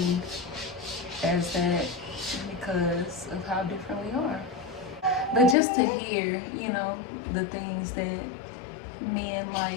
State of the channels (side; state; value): right; drops out; at 5.6 s